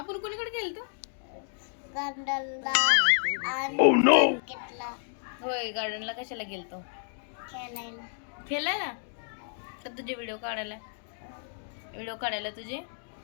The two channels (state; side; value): silent; right; digital silence